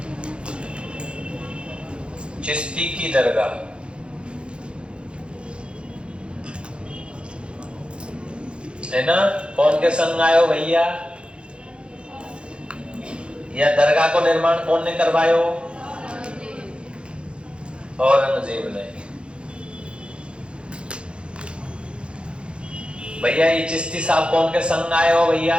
चिश्ती की दरगाह। है ना? कौन के संग आयो भैया? या दरगाह को निर्माण कौन ने करवायो? औरंगजेब ने। भैया ये चिश्ती साहब कौन के संग आयो भैया?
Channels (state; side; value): late; left; 0.056 ms